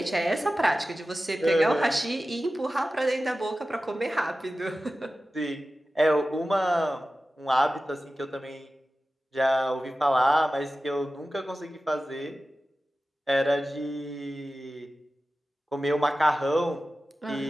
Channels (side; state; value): both; normal; correlation 0.95